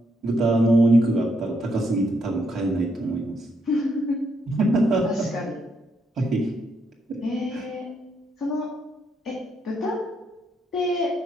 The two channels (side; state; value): both; normal; correlation 0.76